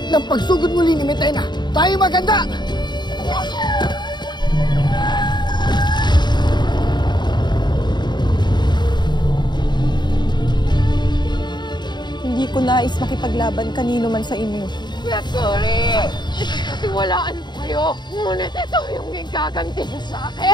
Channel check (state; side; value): late; right; 0.21 ms